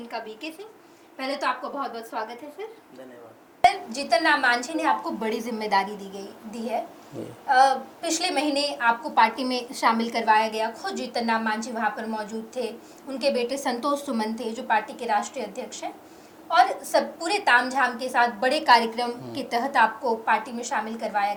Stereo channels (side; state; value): both; identical; correlation 1.00